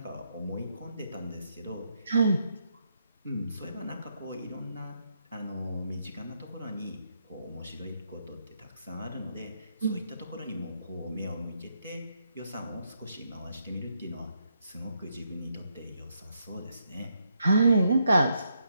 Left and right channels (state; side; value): inverted; both; correlation -0.78